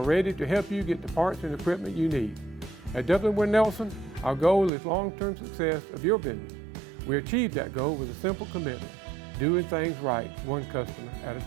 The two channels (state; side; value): drops out; left; at 4.7 s